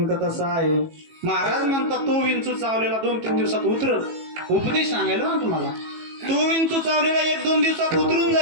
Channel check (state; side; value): late; left; 18 ms